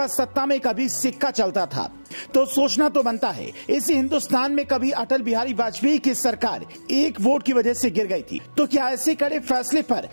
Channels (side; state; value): both; inverted; correlation -1.00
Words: सत्ता में कभी सिक्का चलता था। तो सोचना तो बनता है, इसी हिंदुस्तान में कभी अटल बिहारी वाजपेयी की सरकार एक वोट की वजह से गिर गई थी, तो क्या ऐसे कड़े फैसले पर